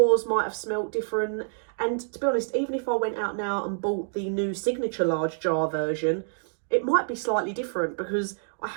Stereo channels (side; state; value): left; silent; digital silence